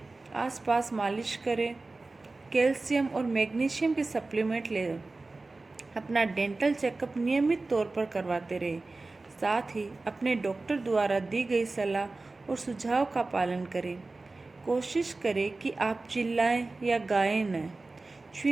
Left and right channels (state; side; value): quieter; left; 3.4 dB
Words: आसपास मालिश करें। कैल्शियम और मैग्नीशियम के सप्लीमेंट लें। अपना डेंटल चेकअप नियमित तौर पर करवाते रहें। साथ ही अपने डॉक्टर द्वारा दी गई सलाह और सुझाव का पालन करें। कोशिश करें कि आप चिल्लाएं या गाएं न।